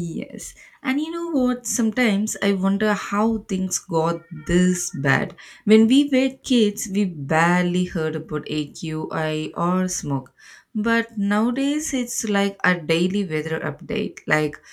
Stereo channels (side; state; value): both; identical; correlation 1.00